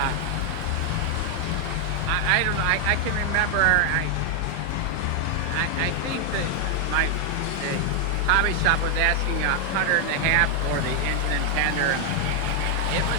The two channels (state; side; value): different; both; correlation 0.01